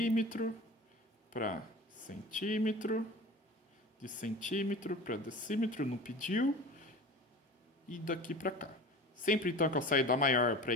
para centímetro, de centímetro para decímetro, não pediu, e daqui para cá. Sempre então que eu saio da maior para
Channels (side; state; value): both; normal; correlation 0.36